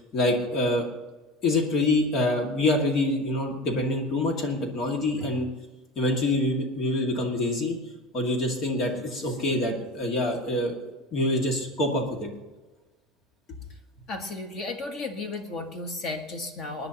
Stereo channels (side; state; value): both; normal; correlation 0.31